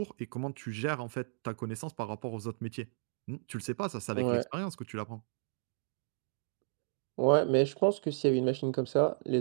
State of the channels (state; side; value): silent; left; digital silence